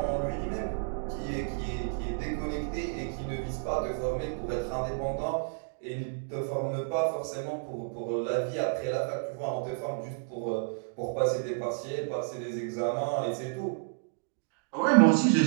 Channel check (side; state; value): left; silent; digital silence